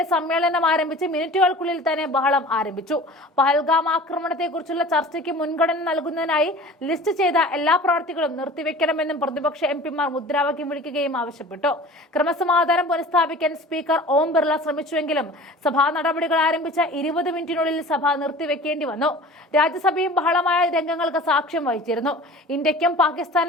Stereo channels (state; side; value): normal; both; correlation 0.41